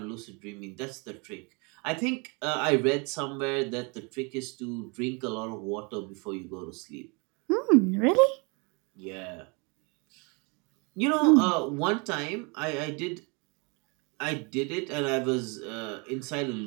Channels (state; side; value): quieter; left; 31.5 dB